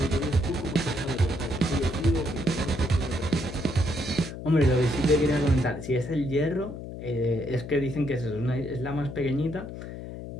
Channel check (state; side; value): noise; left; hum, 10 dB below the sound